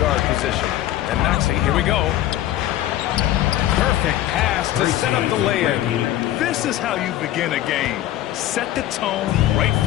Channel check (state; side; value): quieter; right; 13.6 dB